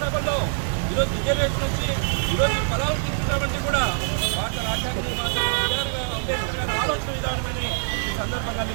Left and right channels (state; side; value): silent; left; 60 dB below the other